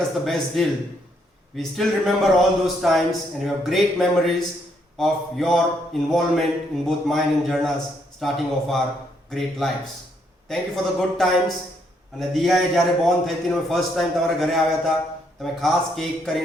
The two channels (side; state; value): both; normal; correlation 0.73